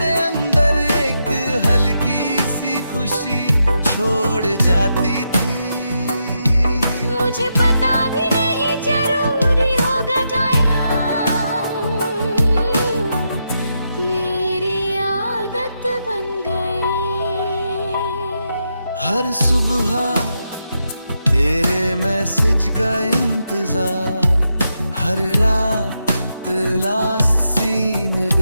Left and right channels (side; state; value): both; inverted; correlation -0.84